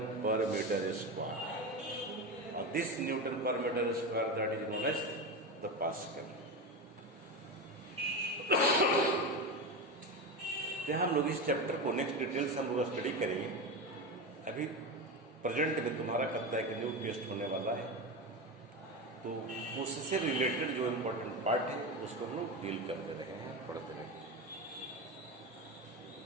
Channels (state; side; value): normal; both; correlation 0.19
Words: per metre square. और this Newton per metre square that is known as the pascal. तो हम लोग इस चैप्टर को नेक्स्ट डिटेल्स हम लोग स्टडी करेंगे। अभी प्रेजेंट में तुम्हारा कहता है कि न्यू टेस्ट होने वाला है, तो उससे रिलेटेड जो इम्पोर्टेंट पार्ट है उसको हम लोग डील करते रहे हैं, पढ़ते रहे।